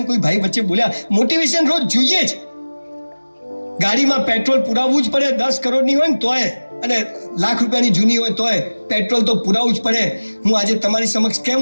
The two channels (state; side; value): inverted; both; correlation -1.00